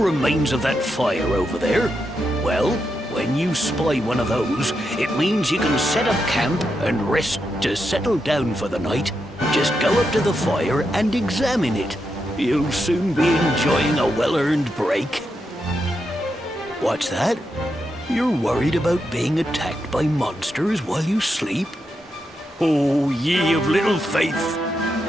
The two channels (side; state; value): both; normal; correlation 0.85